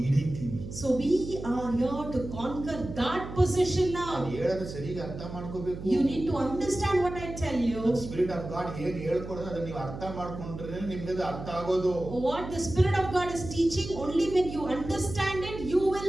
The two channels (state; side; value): noise; right; hum, 10 dB below the sound